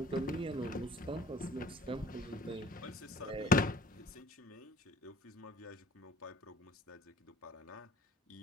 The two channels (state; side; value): normal; both; correlation 0.52